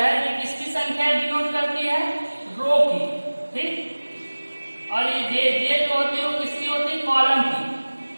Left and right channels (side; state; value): both; inverted; correlation -1.00